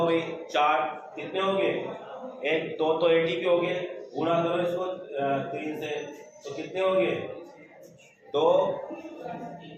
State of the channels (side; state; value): both; identical; correlation 1.00